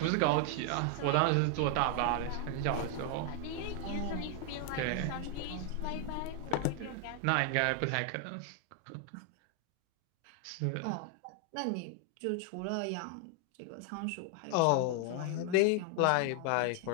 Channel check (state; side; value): different; both; correlation 0.00